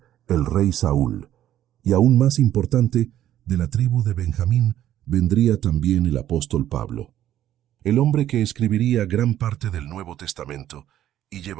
el rey Saúl. Y aún más importante, de la tribu de Benjamín vendría también el apóstol Pablo, el hombre que escribiría gran parte del Nuevo Testamento y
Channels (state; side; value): quieter; left; 12.1 dB